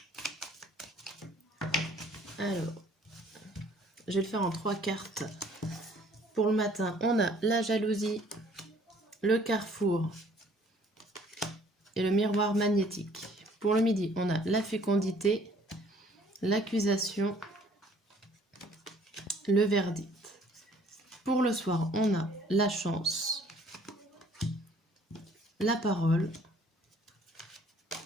Alors, je vais le faire en 3 cartes. Pour le matin, on a la jalousie, le carrefour et le miroir magnétique. Pour le midi, on a la fécondité, l'accusation, le verdict. Pour le soir, on a la chance, la parole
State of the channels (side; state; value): both; normal; correlation 0.57